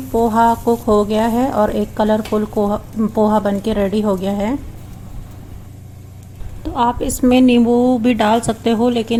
पोहा कुक हो गया है और एक कलरफुल पोहा बन के रेडी हो गया है। तो आप इसमें नींबू भी डाल सकते हो,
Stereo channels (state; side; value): identical; both; correlation 1.00